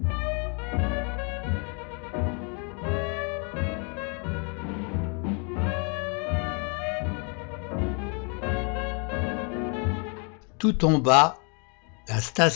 Tout en bas, la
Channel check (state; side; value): quieter; right; 36.5 dB